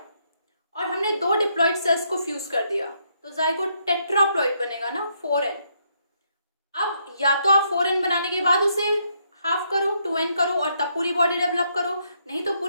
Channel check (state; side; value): inverted; both; correlation -0.74